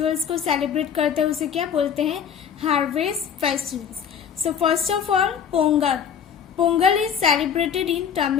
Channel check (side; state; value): right; quieter; 7.8 dB